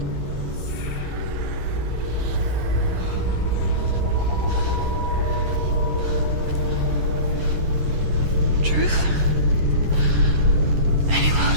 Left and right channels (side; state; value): left; late; 10 ms